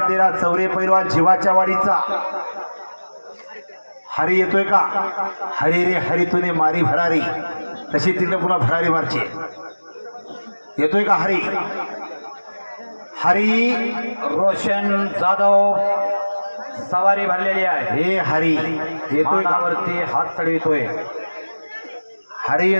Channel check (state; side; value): inverted; both; correlation -1.00